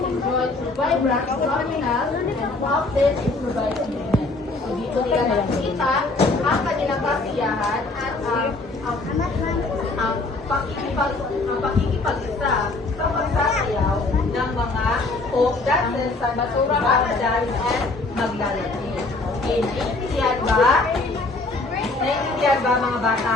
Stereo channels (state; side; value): quieter; right; 3.3 dB